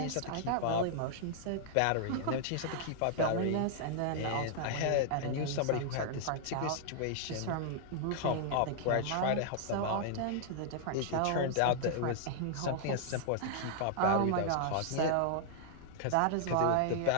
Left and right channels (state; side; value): different; both; correlation -0.01